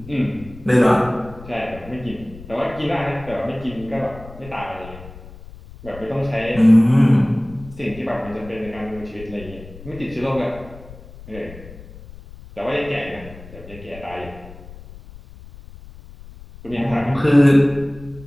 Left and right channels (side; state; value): left; noise; rumble, 17 dB below the sound